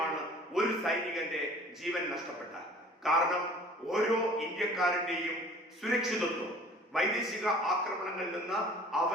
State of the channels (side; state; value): both; normal; correlation 0.49